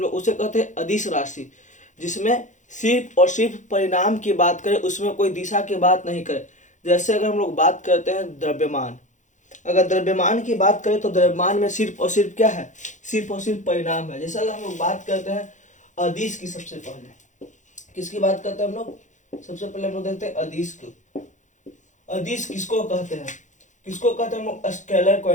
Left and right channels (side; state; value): right; late; 0.36 ms